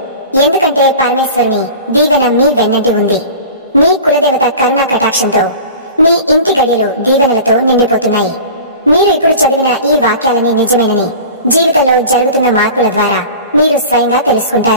ఎందుకంటే పరమేశ్వరుని దీవెన మీ వెన్నంటి ఉంది. మీ కులదేవత కరుణా కటాక్షంతో మీ ఇంటి గడియలు దీవెనలతో నిండిపోతున్నాయి. మీరు ఇప్పుడు చదివిన ఈ వాక్యాలని నిజమేనని జీవితంలో జరుగుతున్న మార్పుల ద్వారా మీరు స్వయంగా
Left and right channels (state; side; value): inverted; both; correlation -0.38